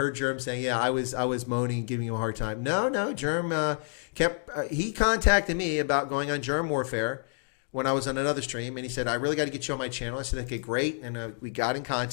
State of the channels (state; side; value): silent; right; 59 dB below the other